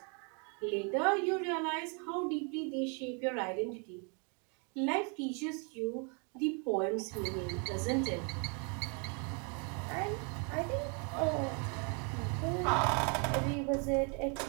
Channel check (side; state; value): left; quieter; 36.4 dB